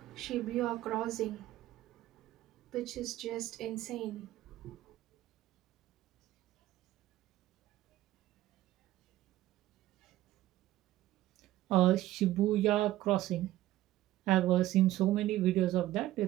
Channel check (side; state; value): left; quieter; 14.9 dB